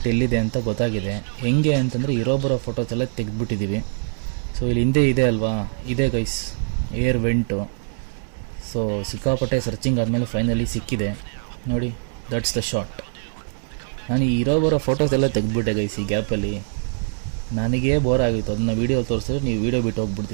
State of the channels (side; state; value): left; silent; 63 dB below the other